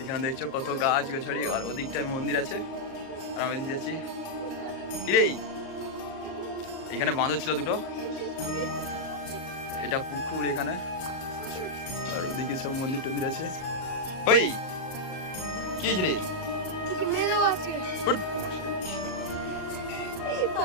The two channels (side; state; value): right; late; 38 ms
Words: এখানে দেখছো কত গাছ গাছালি, আর ওদিকটায় মন্দির আছে আর আমি এদিকে যাচ্ছি। কিরে, এখানে বাঁধর ছিল দুটো, এটা পুকুর এখানে, আর ওদিকে সব মন্দির টন্দির আছে। ওই কি হয়েছে রে? উঠ।